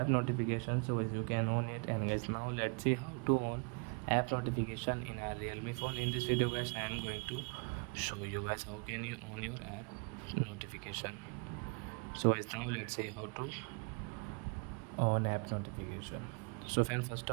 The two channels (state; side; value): quieter; left; 35.0 dB